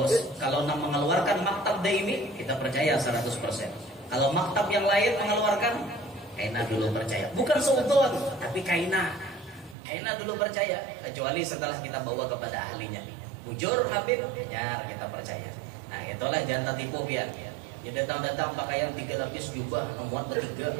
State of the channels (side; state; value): left; drops out; at 9.8 s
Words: mengeluarkan maktab daimi kita percaya 100%. Kalau maktab yang lain mengeluarkan kaina dulu percaya, bukan seudon tapi kaina dulu percaya, kecuali setelah kita bawa kepada ahlinya. Bujur Habib, ya kita percaya. Nah itulah jangan tertipu biar. Ya datang pakaian 3 lapis jubah memuat bertiga.